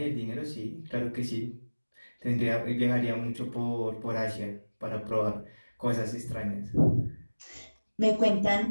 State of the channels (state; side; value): inverted; both; correlation -1.00